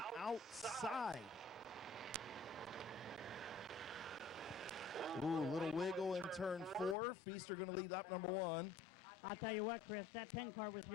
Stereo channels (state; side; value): drops out; right; at 7.0 s